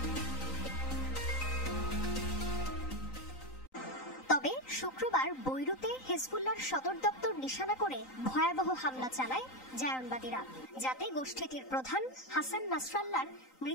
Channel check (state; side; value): late; right; 3.9 ms